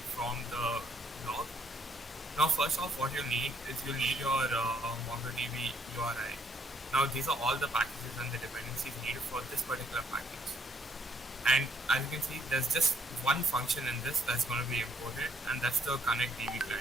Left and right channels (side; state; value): both; normal; correlation 0.69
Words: from the blog. Now, first off, what you need is you'll need your MongoDB URI. Now, these are all the packages and the dependencies needed for this particular package. And as you can see, there's just one function in this that's going to be imported, and that's the connect DB